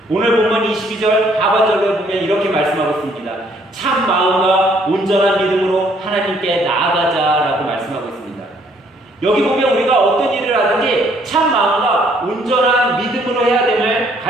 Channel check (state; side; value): normal; both; correlation 0.65